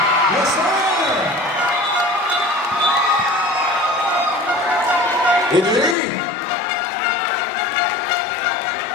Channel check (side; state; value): right; drops out; at 6.0 s